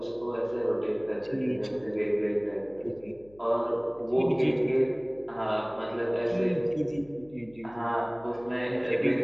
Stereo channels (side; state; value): left; noise; hum, 26 dB below the sound